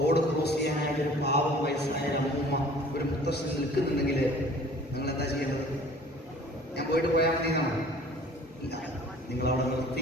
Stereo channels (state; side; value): normal; both; correlation 0.50